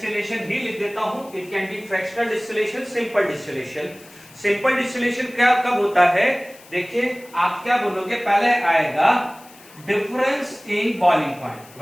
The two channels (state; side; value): noise; left; hiss, 23 dB below the sound